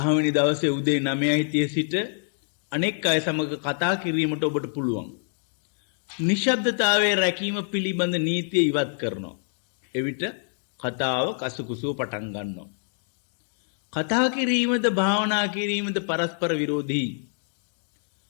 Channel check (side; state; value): right; silent; digital silence